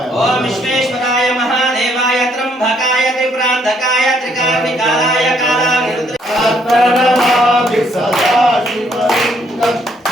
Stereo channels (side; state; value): both; normal; correlation 0.69